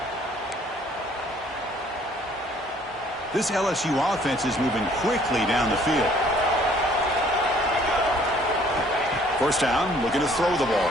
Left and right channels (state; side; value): normal; both; correlation 0.59